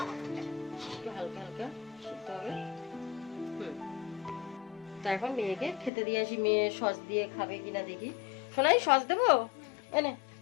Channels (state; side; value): drops out; right; at 5.9 s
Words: হালকা হালকা সিদ্ধ হবে। তো এখন মেয়েকে খেতে দিয়ে আসি, মেয়ে সস দিয়ে খাবে কিনা দেখি। শোনাই, সস দেবো, এনে